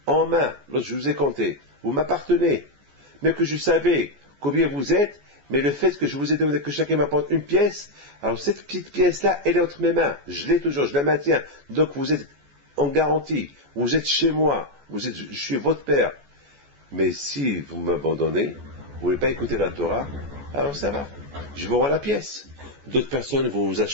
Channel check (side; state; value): left; late; 14 ms